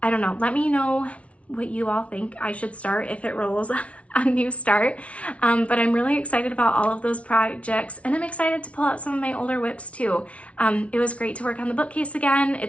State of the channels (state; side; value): late; right; 0.063 ms